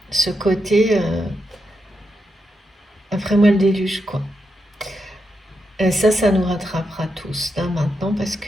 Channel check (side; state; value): both; normal; correlation 0.84